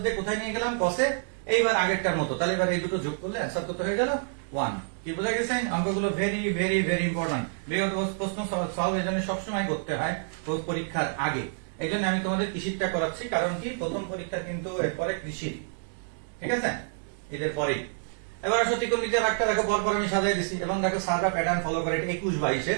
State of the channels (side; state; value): left; silent; digital silence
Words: দিয়ে কোথায় নিয়ে গেলাম কসে, এইবার আগেরটার মতো, তাহলে এবার এই দুটো যোগ করলে অ্যান্সার কত হয়ে গেল 1। কি বোঝা গেছে, অঙ্কগুলো ভেরি ভেরি ভেরি ইম্পর্টেন্ট, বিগত প্রশ্ন সলভ এই জন্য সবসময় করতে হয় পরীক্ষার আগে, এই জন্য আমি তোমাদের কৃষিটা করাচ্ছি, কারণ কি প্রথম পরীক্ষা কিন্তু এরপরে কৃষি, ঠিক আছে, এদের পরে। এবার আসো ত্রিকোণমিতির একটা দেখো, পরপর আমি সাজিয়ে দিচ্ছি, এবং দেখো সাদা প্যাটার্ন ফলো করে